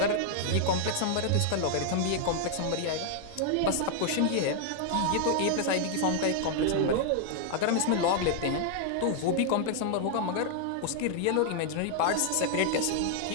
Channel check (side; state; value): both; different; correlation 0.00